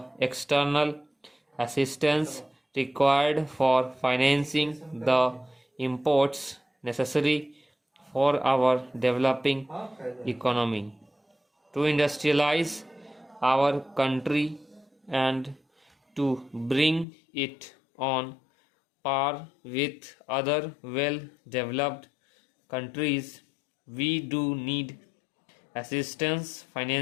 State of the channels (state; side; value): drops out; right; at 17.1 s